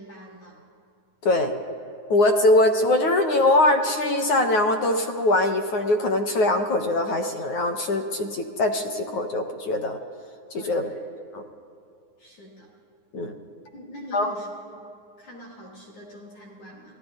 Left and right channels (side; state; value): right; late; 9.5 ms